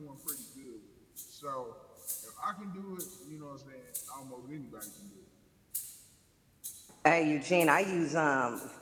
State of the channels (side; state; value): both; identical; correlation 1.00